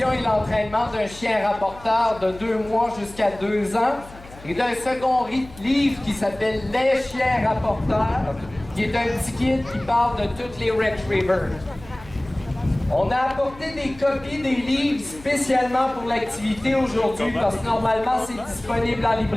et l'entraînement d'un chien rapporteur de 2 mois jusqu'à 2 ans, et d'un second livre qui s'appelle Les chiens rapporteurs, qui est un petit guide qui parle de toutes les retrievers. On a apporté des copies des livres spécialement pour l'activité aujourd'hui parce que normalement c'est disponible en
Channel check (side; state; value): left; noise; hum, 19 dB below the sound